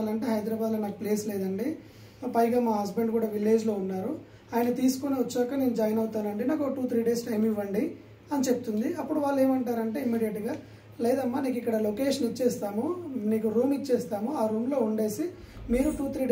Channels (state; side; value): identical; both; correlation 1.00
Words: హైదరాబాద్లో నాకు ప్లేస్ లేదండి, పైగా మా హస్బెండ్ కూడా విలేజ్లో ఉన్నారు, ఆయన తీసుకొని వచ్చాక నేను జాయిన్ అవుతానండి, నాకు 2-3 days టైం ఇవ్వండి అని చెప్తుంది. అప్పుడు వాళ్ళు ఏమంటారంటే ఇమ్మీడియట్గా, లేదమ్మా నీకు ఇక్కడ లొకేషన్ ఇచ్చేస్తాము, నీకు రూమ్ ఇచ్చేస్తాము, ఆ రూమ్లో ఉండేసి మీరు 2-3